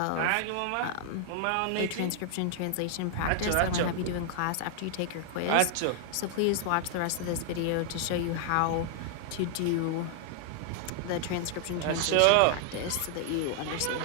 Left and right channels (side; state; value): both; different; correlation 0.00